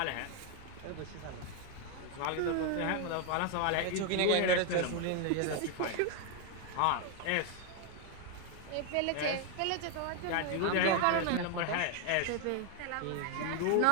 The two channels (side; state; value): both; different; correlation 0.01